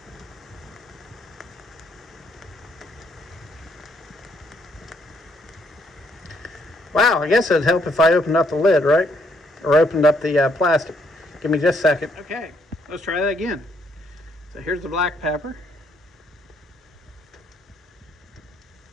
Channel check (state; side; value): normal; both; correlation 0.70